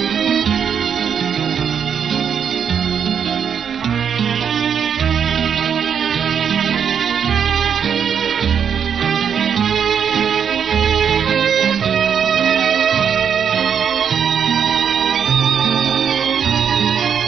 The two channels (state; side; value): quieter; left; 7.6 dB